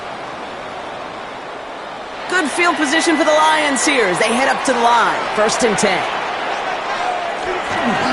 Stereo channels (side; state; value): both; identical; correlation 1.00